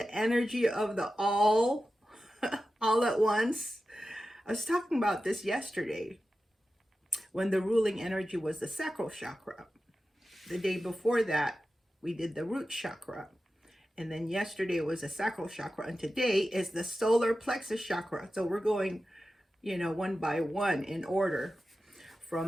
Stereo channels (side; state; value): both; normal; correlation 0.93